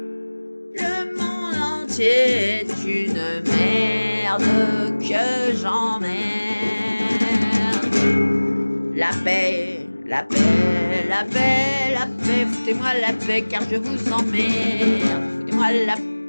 Le monde entier est une merde que j'emmerde. La paix, la paix, la paix, la paix. Foutez-moi la paix car je vous emmerde. Foutez-moi la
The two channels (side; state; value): both; inverted; correlation -1.00